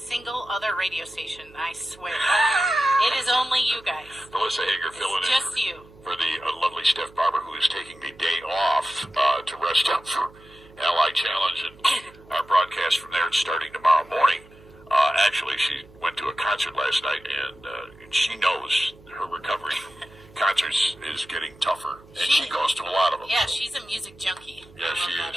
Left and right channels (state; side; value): noise; right; hum, 24 dB below the sound